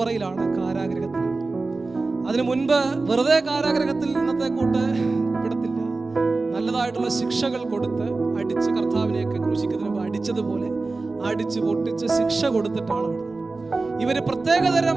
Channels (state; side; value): quieter; left; 3.6 dB